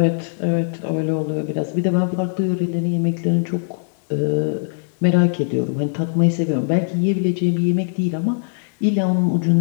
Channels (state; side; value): silent; right; 61 dB below the other